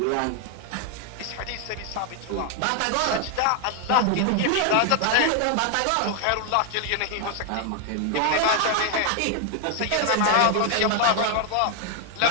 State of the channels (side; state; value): both; different; correlation 0.00